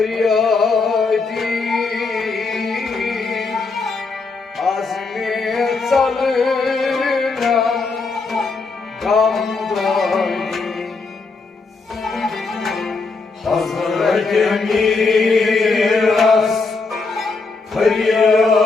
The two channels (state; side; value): quieter; right; 4.1 dB